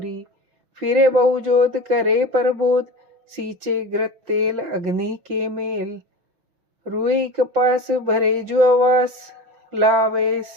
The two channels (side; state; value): left; late; 6.0 ms